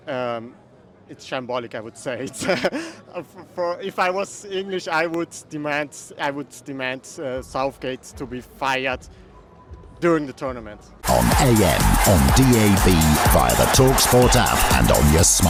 It's shambolic, I would say. It's, if I was English, I would demand Southgate to be fired during the tournament. On AM, on DAB, via the talkSPORT app and on your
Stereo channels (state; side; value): identical; both; correlation 1.00